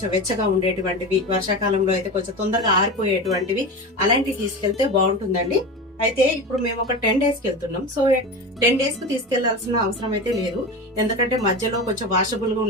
వెచ్చగా ఉండేటువంటివి, వర్షాకాలంలో అయితే కొంచెం తొందరగా ఆరిపోయేటువంటివి అలాంటివి తీసుకెళ్తే బాగుంటుందండి. అయితే ఇప్పుడు మేము ఒక 10 days కి వెళ్తున్నాం. సో 10 days కు తీసుకెళ్లాల్సిన అవసరం అయితే లేదు. ఎందుకంటే మధ్యలో కొంచెం వాషబుల్ గా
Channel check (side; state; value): both; normal; correlation 0.26